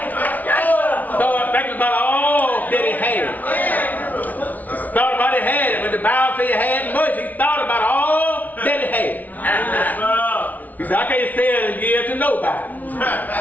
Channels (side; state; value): right; late; 0.077 ms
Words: Started thinking about all that he had. Thought about he had it. When the Bible says he had much, he thought about all that he had. He said, I can't sell and give to nobody.